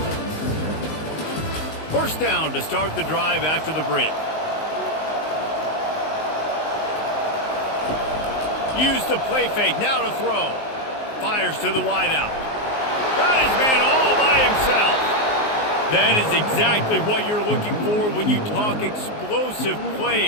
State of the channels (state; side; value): late; right; 19 ms